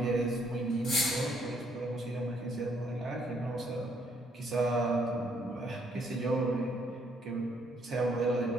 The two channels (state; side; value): normal; both; correlation 0.69